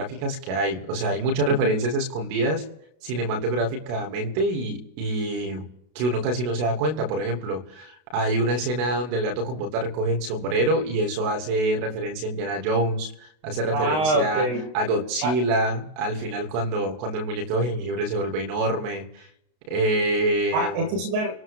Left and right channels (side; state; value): left; late; 32 ms